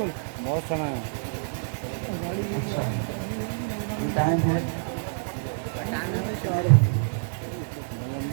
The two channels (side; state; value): left; silent; digital silence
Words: बहुत समय है। अच्छा, टाइम है